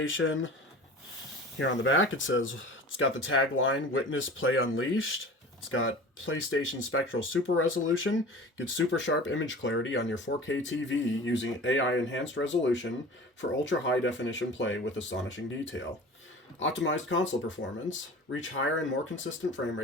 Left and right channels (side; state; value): both; normal; correlation 0.38